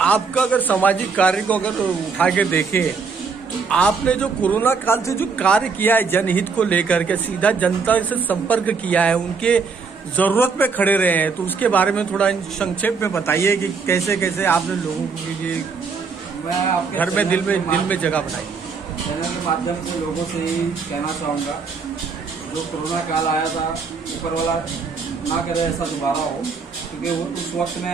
आपका अगर सामाजिक कार्य को अगर उठा के देखें, आपने जो कोरोना काल से जो कार्य किया है जनहित को लेकर के, सीधा जनता से संपर्क किया है, उनके जरूरत पे खड़े रहे हैं, तो उसके बारे में थोड़ा संक्षेप में बताइए कि कैसे कैसे आपने लोगों के लिए घर में दिल में जगह बनाई। चैनल के माध्यम से लोगों से ही कहना चाहूँगा, जो कोरोना काल आया था, ऊपर वाला ना करे ऐसा दोबारा हो। क्योंकि वो उस वक्त में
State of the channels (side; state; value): left; quieter; 5.0 dB